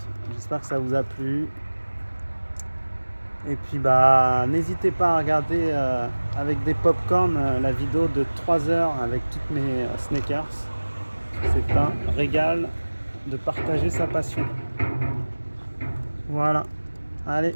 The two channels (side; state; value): both; inverted; correlation -1.00